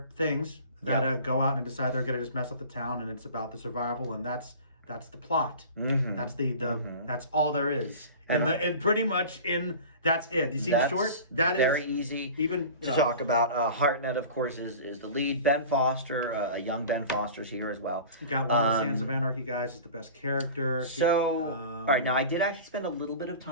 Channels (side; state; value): both; inverted; correlation -0.38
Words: things that go out and decide they're going to just mess up the town, and it's about the survival, and that's the plot. Mm-hmm. That's that's all there is. And pretty much that's it. You see the short? That very is easy even to talk about. Hartnett, of course, is the lead. Ben Foster, a young Ben Foster's here as well. You got one of the Sons of Anarchy guys is the best character. So, all right, now I did actually spend a little bit of